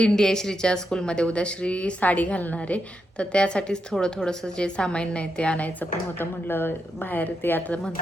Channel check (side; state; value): both; normal; correlation 0.84